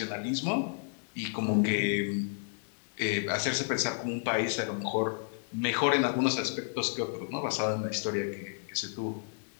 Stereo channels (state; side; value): silent; right; digital silence